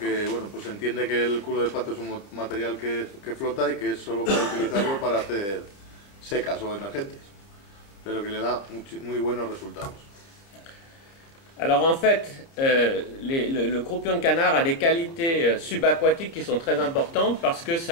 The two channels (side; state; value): right; late; 30 ms